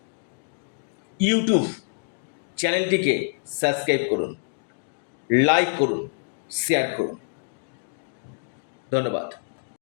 ইউটিউব চ্যানেলটিকে সাবস্ক্রাইব করুন, লাইক করুন, শেয়ার করুন। ধন্যবাদ।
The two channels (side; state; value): right; silent; digital silence